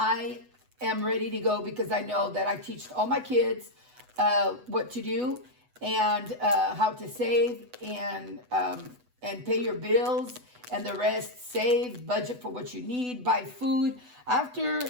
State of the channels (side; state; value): left; late; 8.0 ms